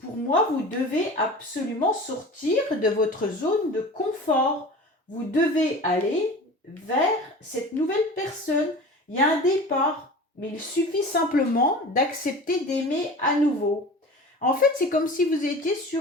moi, vous devez absolument sortir de votre zone de confort. Vous devez aller vers cette nouvelle personne. Il y a un départ, mais il suffit simplement d'accepter d'aimer à nouveau. En fait, c'est comme si vous étiez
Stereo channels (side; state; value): both; normal; correlation 0.37